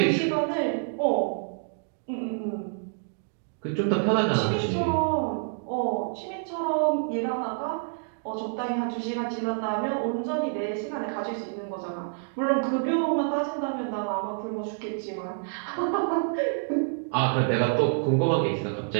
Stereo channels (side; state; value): left; silent; digital silence